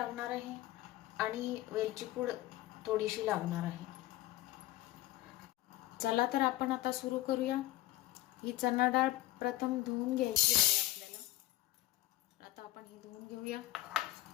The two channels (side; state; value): right; quieter; 16.5 dB